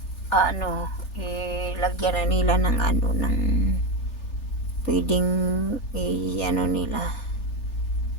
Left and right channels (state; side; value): late; right; 3.4 ms